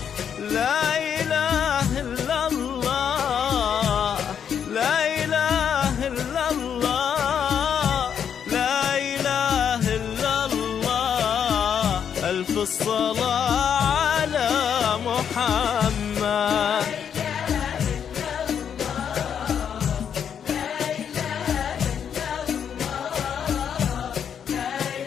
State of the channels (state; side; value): quieter; right; 8.1 dB